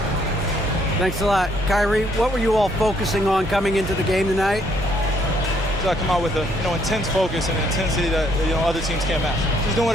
Thanks a lot. Kyrie, what were you all focusing on coming into the game tonight? I come out with a intense focus and intensity that other teams can't match. Just doing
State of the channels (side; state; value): both; normal; correlation 0.68